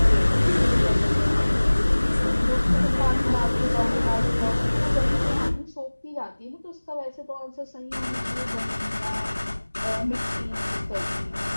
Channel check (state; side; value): inverted; both; correlation -1.00